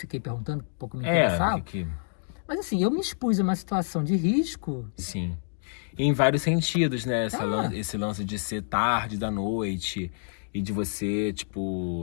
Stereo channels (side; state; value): right; silent; digital silence